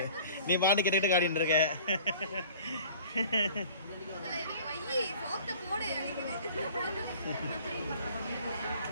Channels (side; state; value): both; inverted; correlation -0.48